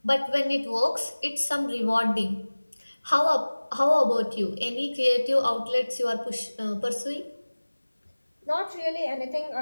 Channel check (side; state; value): both; inverted; correlation -1.00